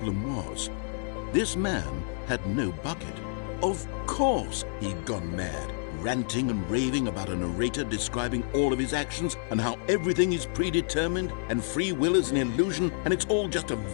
was. This man had no bucket. Of course he'd gone mad, ranting and raving about a narrator describing all of his actions and how everything is predetermined and free will is an illusion and it's all just a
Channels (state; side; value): silent; right; 57 dB below the other